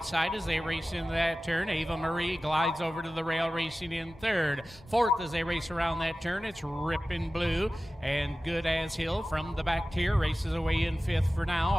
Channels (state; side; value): normal; both; correlation 0.96